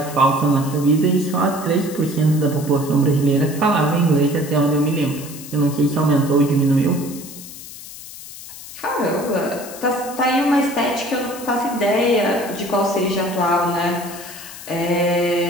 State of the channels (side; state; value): left; noise; hiss, 14 dB below the sound